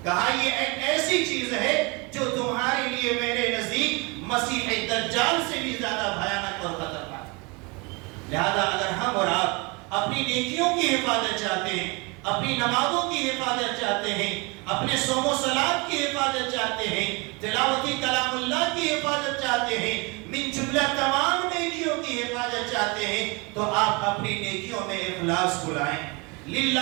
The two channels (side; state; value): left; quieter; 28.4 dB